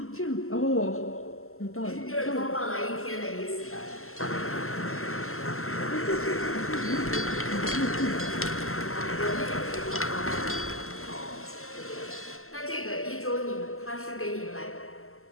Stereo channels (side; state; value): right; late; 0.62 ms